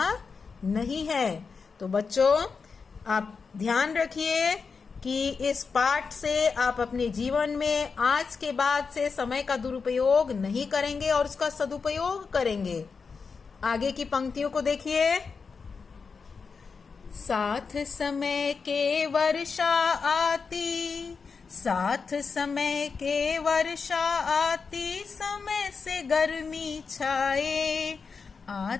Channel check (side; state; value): right; quieter; 5.2 dB